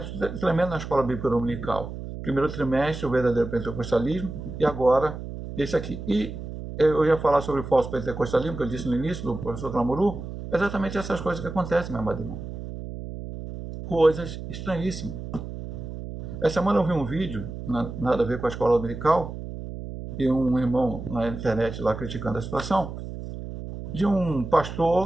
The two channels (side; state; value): right; noise; hum, 9 dB below the sound